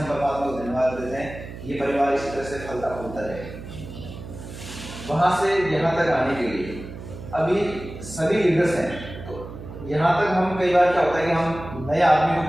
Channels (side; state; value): right; noise; hum, 12 dB below the sound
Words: परमात्मा को धन्यवाद देते हैं, ये परिवार इसी तरह से फलता फूलता रहे। वहाँ से यहाँ तक आने के लिए अभी सभी लीडर्स हैं, तो यहाँ तक हम कई बार क्या होता है कि हम नए आदमी को